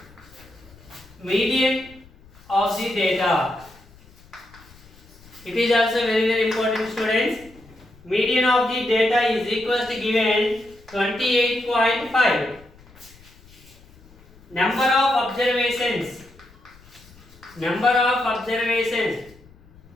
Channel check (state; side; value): noise; left; rumble, 25 dB below the sound